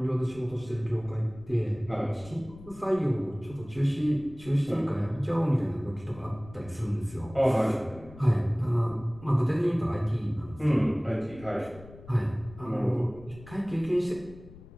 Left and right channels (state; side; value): noise; left; rumble, 19 dB below the sound